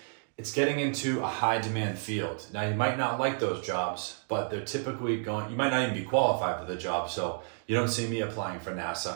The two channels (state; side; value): silent; left; 57 dB below the other